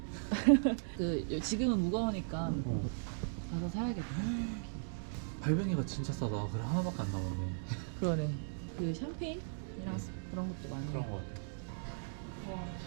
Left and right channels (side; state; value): left; silent; digital silence